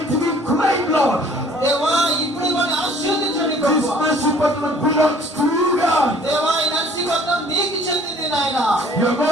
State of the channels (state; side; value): normal; both; correlation 0.54